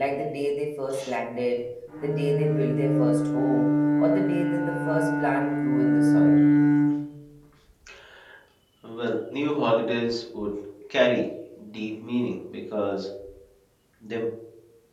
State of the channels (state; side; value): identical; both; correlation 1.00